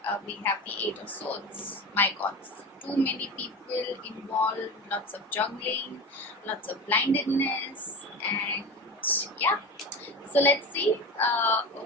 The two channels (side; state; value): both; normal; correlation 0.28